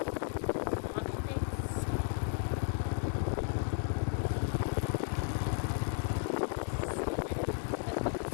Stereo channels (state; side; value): silent; right; 55 dB below the other